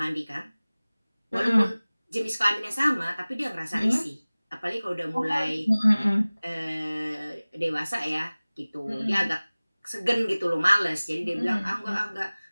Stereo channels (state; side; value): inverted; both; correlation -0.99